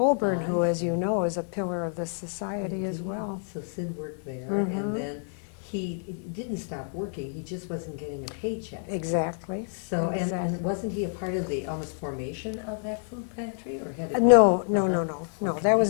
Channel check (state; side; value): silent; right; digital silence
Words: I who, as you see. know, is a pillar of this society as Indeed. well. So Sid worked there, Mhm. and then he didn't stop working. He just wasn't getting a paycheck. Exactly. So, and Exactly. wasn't he a part of the almost formation of that food pantry, or had it? No, been- no, Uh-huh. no. Okay. That